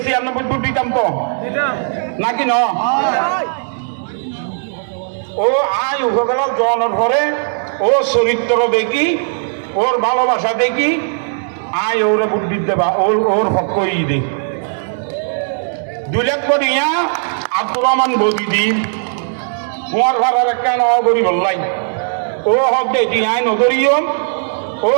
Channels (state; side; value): silent; left; 68 dB below the other